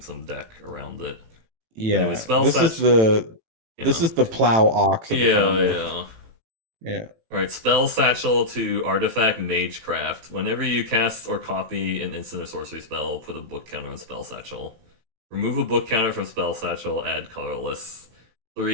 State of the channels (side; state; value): left; late; 18 ms